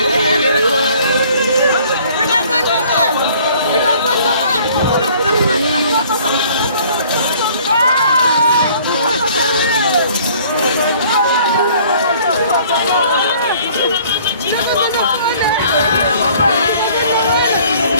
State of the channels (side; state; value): both; inverted; correlation -0.55